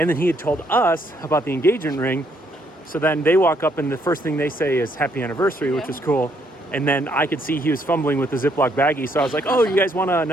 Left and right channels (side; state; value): both; normal; correlation 0.71